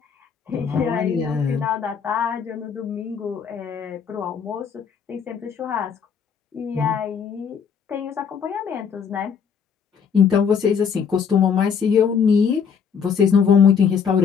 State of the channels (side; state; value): right; quieter; 6.7 dB